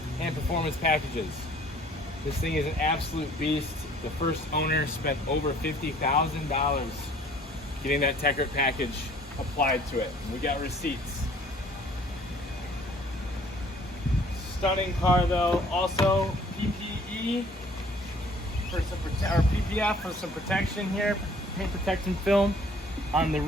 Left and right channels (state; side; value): normal; both; correlation 0.55